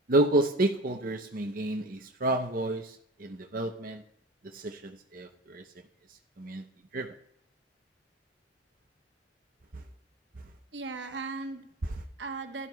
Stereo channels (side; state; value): both; normal; correlation 0.33